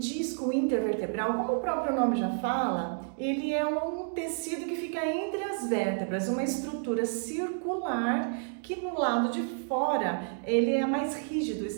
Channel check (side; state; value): left; silent; 58 dB below the other